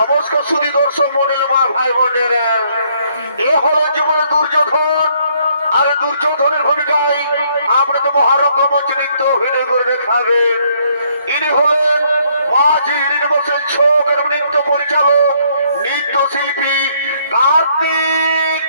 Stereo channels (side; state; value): both; inverted; correlation -0.68